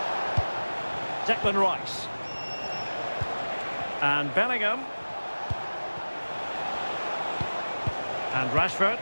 Declan Rice. And Bellingham. And Rashford.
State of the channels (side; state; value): both; inverted; correlation -1.00